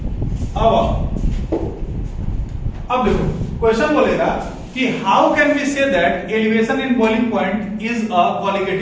अब देखो क्वेश्चन बोलेगा कि how can we say that elevation in boiling point is a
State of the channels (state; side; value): identical; both; correlation 1.00